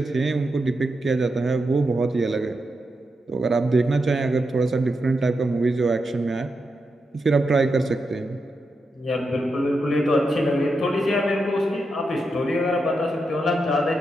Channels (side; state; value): both; normal; correlation 0.86